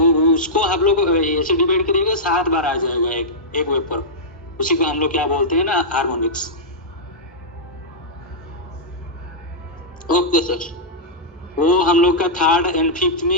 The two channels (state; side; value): normal; both; correlation -0.11